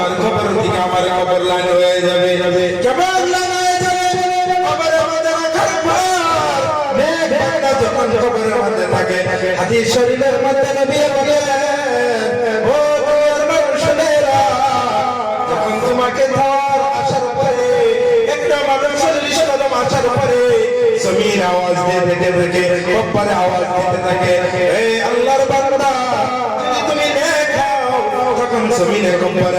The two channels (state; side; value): identical; both; correlation 1.00